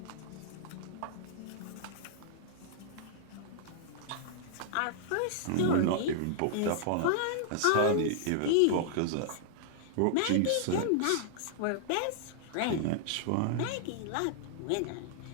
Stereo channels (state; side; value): different; both; correlation -0.01